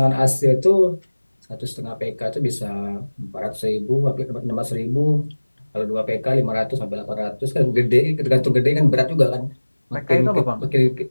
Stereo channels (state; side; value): inverted; both; correlation -1.00